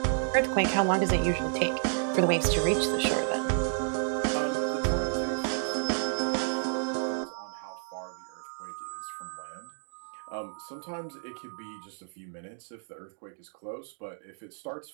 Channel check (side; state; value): left; silent; digital silence